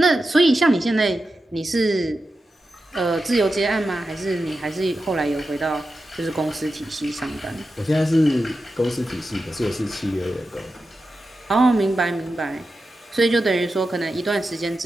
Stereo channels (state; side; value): normal; both; correlation 0.91